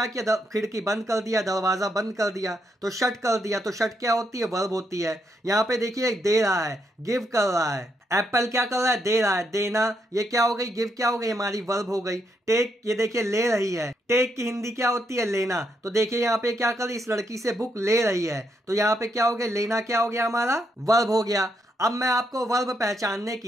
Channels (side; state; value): both; normal; correlation 0.78